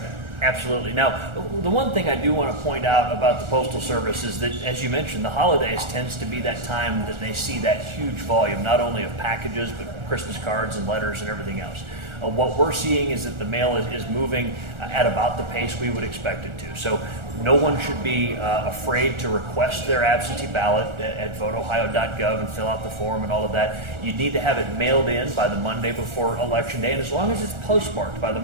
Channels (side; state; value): left; late; 1.4 ms